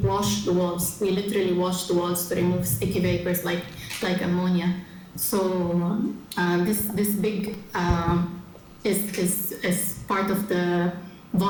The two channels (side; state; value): both; identical; correlation 1.00